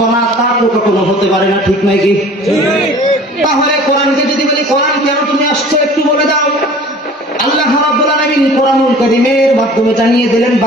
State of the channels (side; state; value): both; normal; correlation 0.46